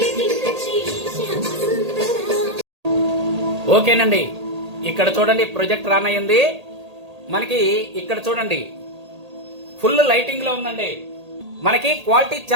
ఓకేనండి, ఇక్కడ చూడండి ప్రొజెక్ట్ రన్ అయ్యింది మనకి. ఇక్కడ చూడండి ఫుల్ లైటింగ్ లో ఉందండి. మనకి క్వాలిటీ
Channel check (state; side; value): late; left; 1.8 ms